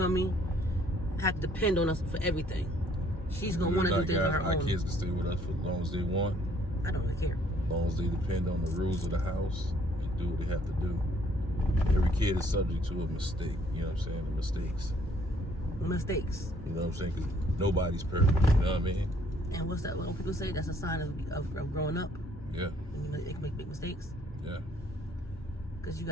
me? Have to depend on us for everything. She's gonna want to do things on her Our own. kids can stay with us for as long as they want. I don't really care. As long as they depend on the rules of the house and do what they have to do. Every kid is subject to a mistake, you know what I'm saying? The mistakes. mistakes. You know what I'm saying? Because nobody's perfect. You know what I mean? And what's that? When people say that's a sign of growing up. Yeah. They can make big mistakes. Yeah. Because you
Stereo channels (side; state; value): both; normal; correlation 0.63